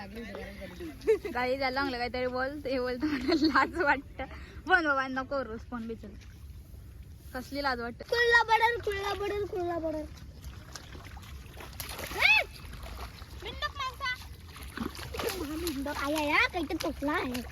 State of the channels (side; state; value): both; identical; correlation 1.00